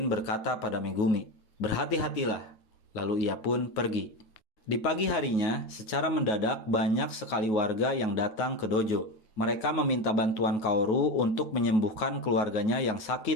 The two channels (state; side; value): late; right; 9.4 ms